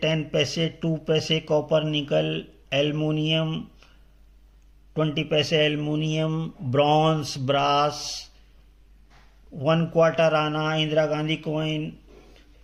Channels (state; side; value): identical; both; correlation 1.00